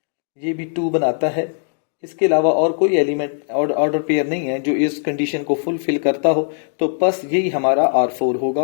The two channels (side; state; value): right; silent; digital silence